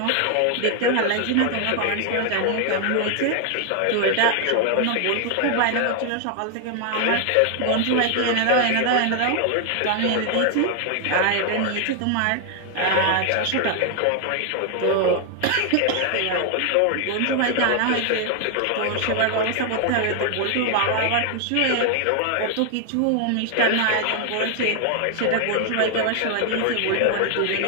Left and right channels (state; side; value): different; both; correlation 0.00